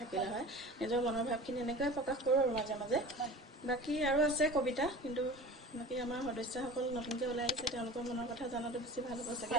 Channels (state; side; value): normal; both; correlation 0.38